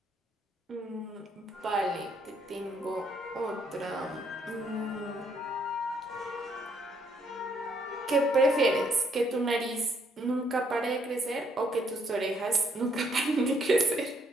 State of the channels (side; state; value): both; normal; correlation 0.70